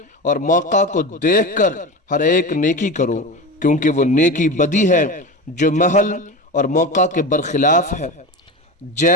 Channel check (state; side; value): normal; both; correlation 0.25